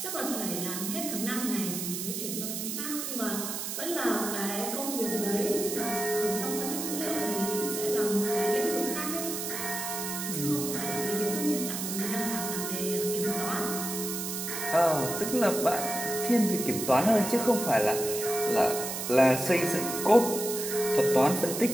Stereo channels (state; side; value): noise; right; hiss, 4 dB below the sound